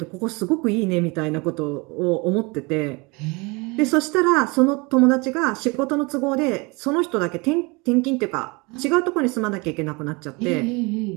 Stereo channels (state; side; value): quieter; left; 27.2 dB